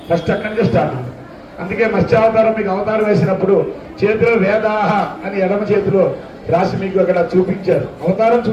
ఫస్ట్ అక్కడి నుంచి స్టార్ట్. అందుకే మత్స్యావతారం మీకు అవతారం వేసినప్పుడు చేతిలో వేదాహ అని ఎడమ చేతిలో రాసి మీకు అక్కడ చూపించారు. అవతారం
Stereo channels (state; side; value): identical; both; correlation 1.00